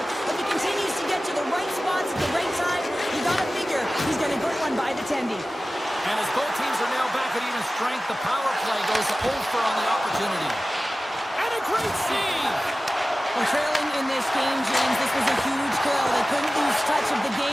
If he continues to get to the right spots at the right time, you gotta figure he's gonna get one by the tendy. And as both teams are now back at even strength, the power play goes over on the opportunity. And a great save. Well, trailing in this game, James, this was a huge kill. They couldn't lose touch of the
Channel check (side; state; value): both; normal; correlation 0.96